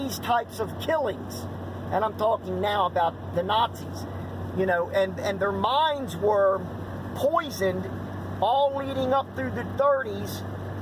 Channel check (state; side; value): identical; both; correlation 1.00